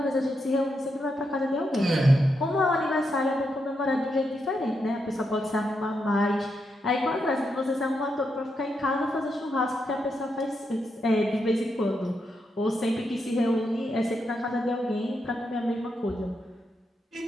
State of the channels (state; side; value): normal; both; correlation 0.83